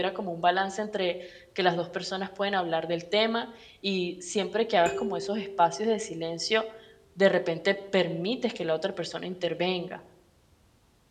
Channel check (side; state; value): both; identical; correlation 1.00